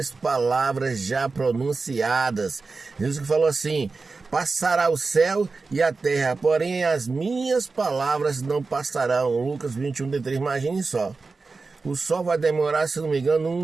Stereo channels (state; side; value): quieter; left; 4.1 dB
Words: palavras já pronunciadas. Jesus que falou assim: passará o céu e a terra, porém as minhas palavras não passarão. Lucas 21:3, imagine só. O sol vai demorar, se não me engano,